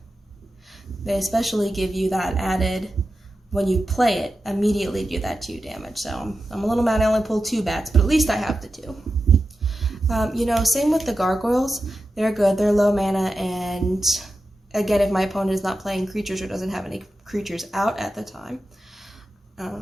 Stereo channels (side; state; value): both; normal; correlation 0.91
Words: They especially give you that added, when you play it, immediately do that 2 damage. So I'm a little mad I only pulled 2 bats, but at least I have the 2. You know, same with the gargoyles. They're good. They're low mana, and again, if my opponent is not playing creatures or doesn't have any creatures out at the time,